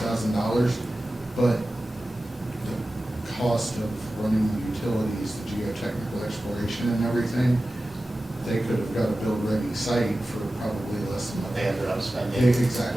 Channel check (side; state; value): both; normal; correlation 0.95